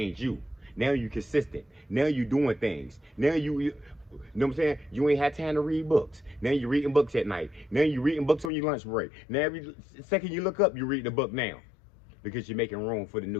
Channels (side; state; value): right; drops out; at 8.5 s